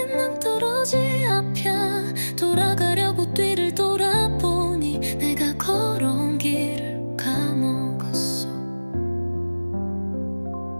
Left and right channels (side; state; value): both; inverted; correlation -1.00